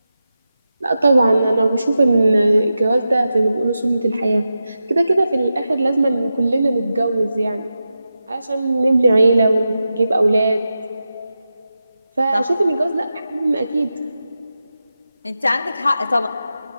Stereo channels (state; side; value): inverted; both; correlation -0.91